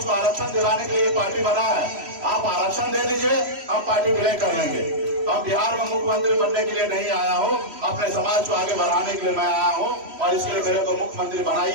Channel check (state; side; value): late; left; 3.1 ms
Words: को आरक्षण दिलाने के लिए पार्टी बना है। आप आरक्षण दे दीजिए, हम पार्टी विलय कर लेंगे। अब बिहार में मुख्यमंत्री बनने के लिए नहीं आया हूँ, अपने समाज को आगे बढ़ाने के लिए मैं आया हूँ और इसके लिए मेरे को मुख्यमंत्री